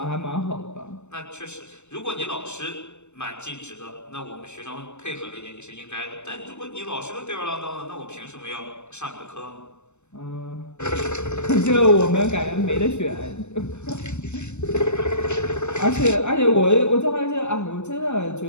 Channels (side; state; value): right; late; 0.83 ms